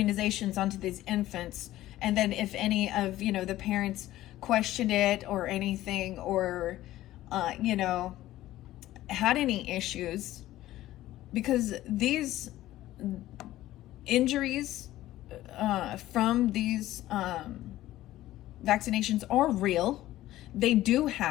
onto these infants. And then if any of, the parents questioned it or anything, or, had any issues, because these injuries from these vaccinations are real. They do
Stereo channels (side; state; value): right; quieter; 15.0 dB